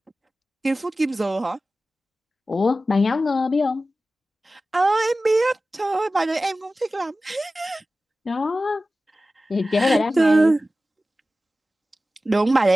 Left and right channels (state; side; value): normal; both; correlation 0.95